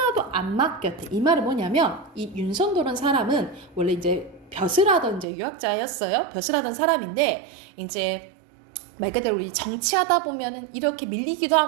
안 맡겼대. 이 말은 뭐냐면 이 윤석도라는 사람은 원래 이제 벼슬하던 이제 유학자였어요. 벼슬하던 사람인데 이제 말 그대로 우리 정치하다 보면은 이렇게 밀리기도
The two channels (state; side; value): drops out; left; at 5.2 s